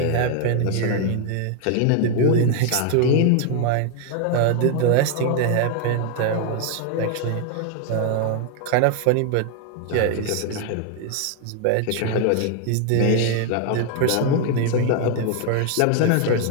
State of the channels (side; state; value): both; different; correlation 0.00